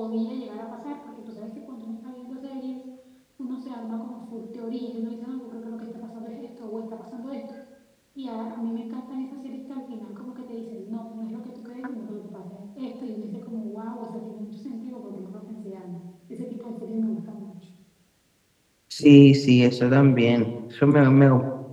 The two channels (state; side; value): identical; both; correlation 1.00